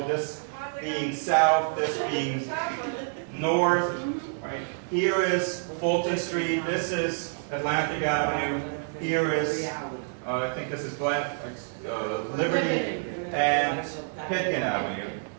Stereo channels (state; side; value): silent; left; digital silence